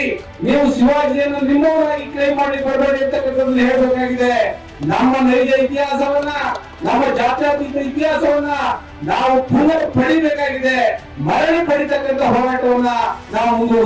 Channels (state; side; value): identical; both; correlation 1.00